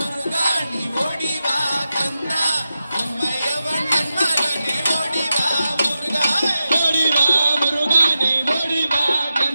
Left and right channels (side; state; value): both; inverted; correlation -0.91